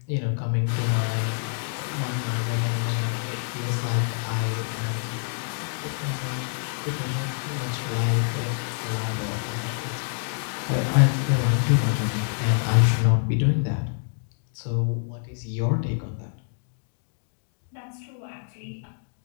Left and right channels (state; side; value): silent; right; digital silence